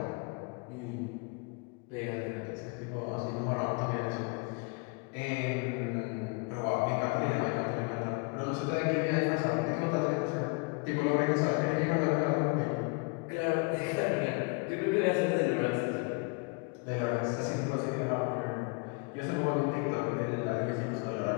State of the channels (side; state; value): right; quieter; 32.1 dB